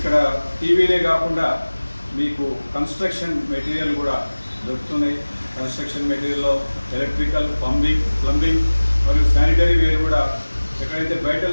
టీవీలే కాకుండా మీకు కన్స్ట్రక్షన్ మెటీరియల్ కూడా దొరుకుతున్నాయి. కన్స్ట్రక్షన్ మెటీరియల్లో ఎలక్ట్రికల్, ప్లంబింగ్ మరియు శానిటరీ వేర్ కూడా ఎక్కడైతే బయట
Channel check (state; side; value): inverted; both; correlation -1.00